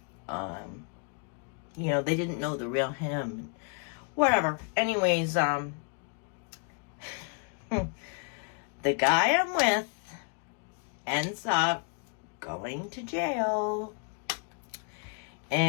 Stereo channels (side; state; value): right; quieter; 37.9 dB